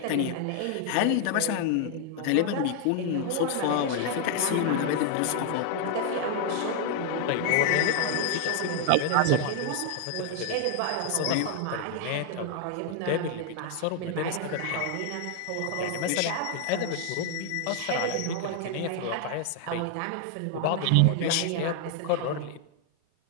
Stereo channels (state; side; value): different; both; correlation 0.00